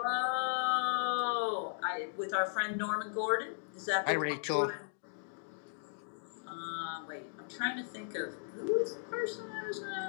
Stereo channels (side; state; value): right; silent; digital silence